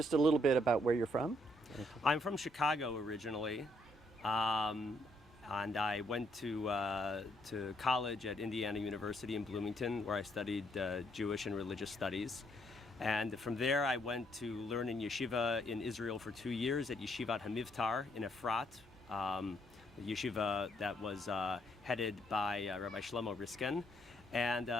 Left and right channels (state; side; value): normal; both; correlation 0.72